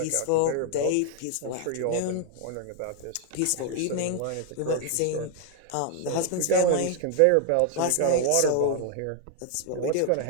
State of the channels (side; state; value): both; different; correlation 0.00